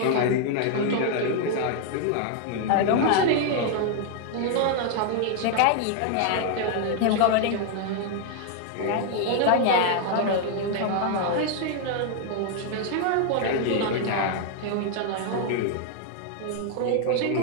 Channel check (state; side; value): different; both; correlation 0.00